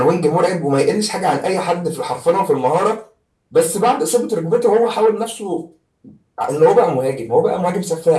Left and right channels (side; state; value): both; identical; correlation 1.00